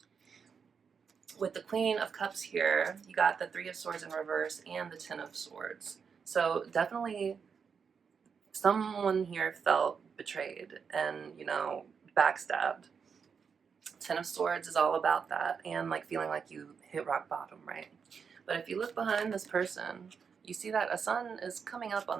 With the Queen of Cups here, you got the 3 of Swords in reverse and the 10 of Swords. So definitely someone here felt betrayed and, you know, backstabbed. 10 of Swords is all about that and like feeling like you hit rock bottom, right? But if you look behind this person, you see that a sun is coming up on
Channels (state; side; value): quieter; left; 6.2 dB